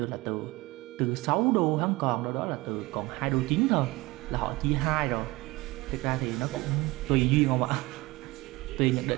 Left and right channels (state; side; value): quieter; left; 21.4 dB